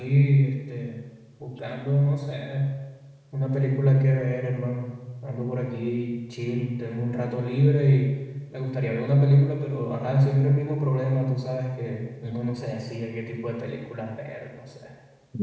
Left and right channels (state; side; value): identical; both; correlation 1.00